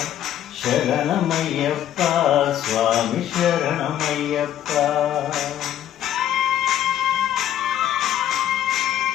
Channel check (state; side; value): quieter; right; 11.3 dB